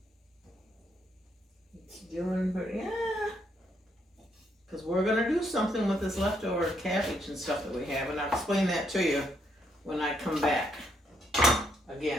It's doing pretty, yeah. Because we're going to do something with this leftover cabbage and stuff that we have, and I'll explain that to you when I come back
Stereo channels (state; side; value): normal; both; correlation 0.74